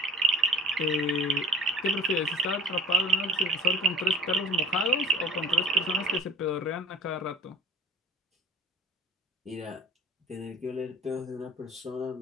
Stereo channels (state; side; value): normal; both; correlation 0.44